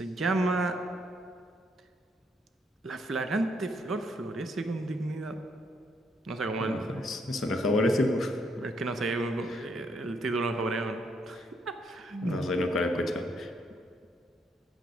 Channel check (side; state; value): both; normal; correlation 0.73